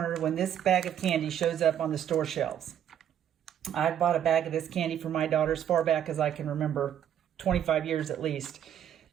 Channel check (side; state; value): left; quieter; 9.9 dB